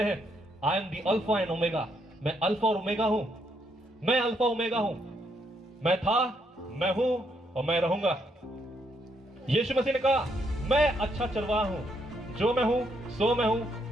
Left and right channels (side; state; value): both; normal; correlation 0.75